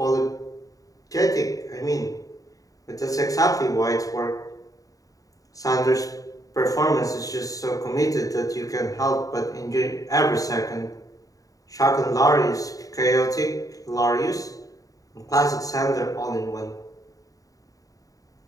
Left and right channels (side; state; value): right; late; 0.17 ms